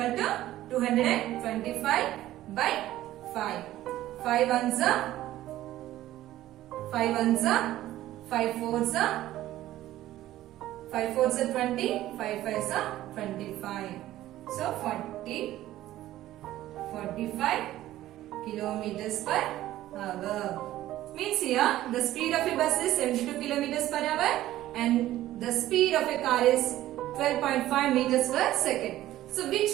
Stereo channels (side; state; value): left; quieter; 14.4 dB